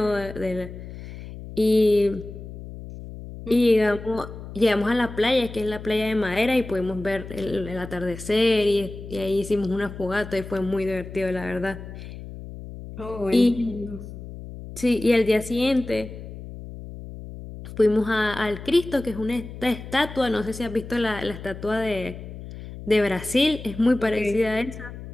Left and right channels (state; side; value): noise; left; hum, 12 dB below the sound